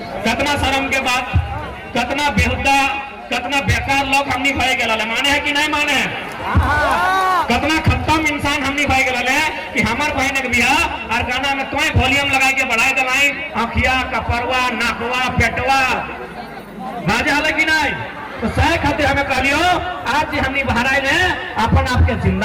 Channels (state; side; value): identical; both; correlation 1.00